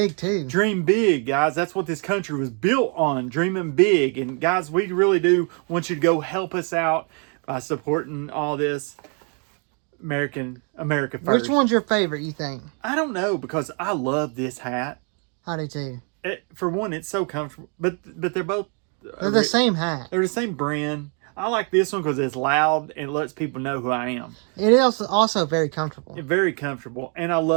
too. Dream big, guys. That's what this country was built on, dreaming big. And guys, we really do want you to go help us out by supporting all this. America first. Which one's your favorite, you think? I don't know, because I love this hat. I do too. For one, it's so comfortable, but they're both... They're the same hat. They're the same brand. I like this one because it's loud and it lets people know who I am. It is also very comfortable. Very comfortable, and I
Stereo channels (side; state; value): left; quieter; 38.6 dB